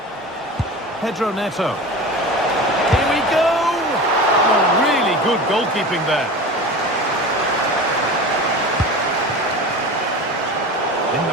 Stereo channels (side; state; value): both; normal; correlation 0.32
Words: Pedro Neto. Here we go! Oh, really good goalkeeping there. In